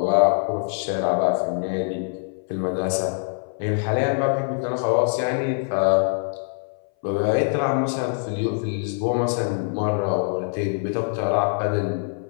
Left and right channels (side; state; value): right; silent; 59 dB below the other